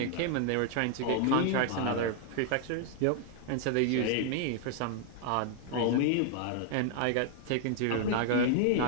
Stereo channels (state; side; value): different; both; correlation 0.00